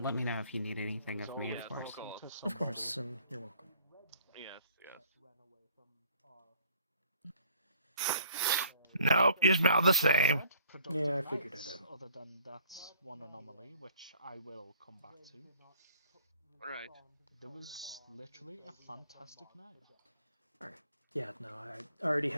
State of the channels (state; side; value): inverted; both; correlation -0.57